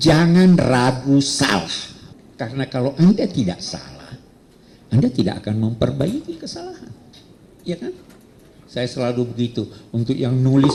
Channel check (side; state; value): both; identical; correlation 1.00